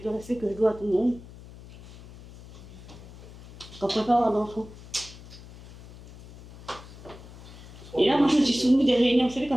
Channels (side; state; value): left; noise; hum, 18 dB below the sound